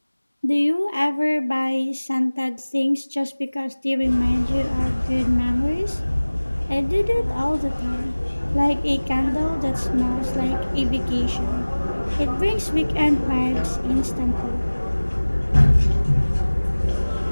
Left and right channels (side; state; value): both; inverted; correlation -1.00